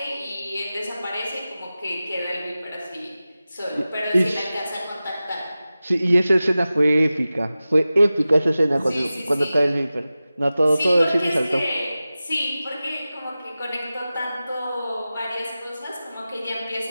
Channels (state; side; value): inverted; both; correlation -0.96